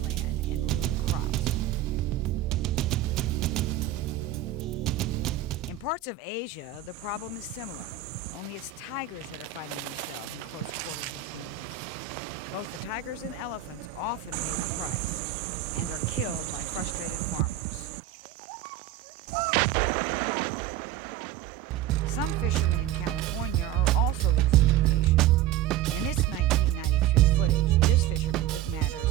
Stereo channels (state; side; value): quieter; left; 11.6 dB